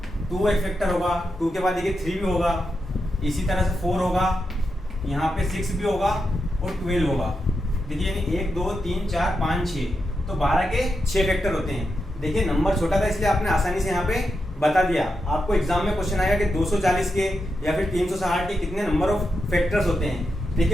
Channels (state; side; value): normal; both; correlation 0.86